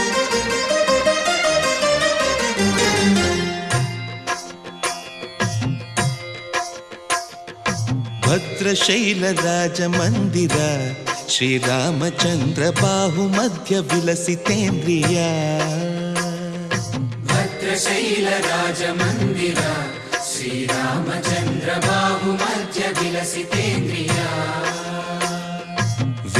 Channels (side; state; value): both; identical; correlation 1.00